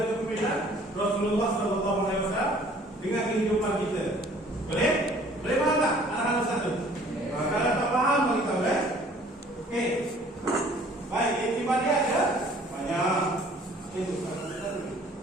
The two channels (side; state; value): both; normal; correlation 0.54